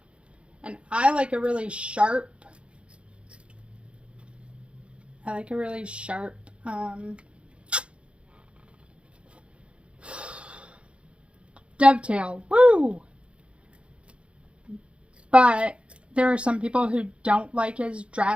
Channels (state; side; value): late; left; 0.059 ms